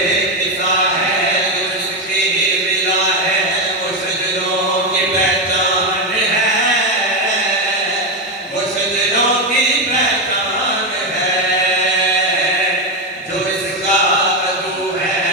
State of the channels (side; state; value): both; normal; correlation 0.10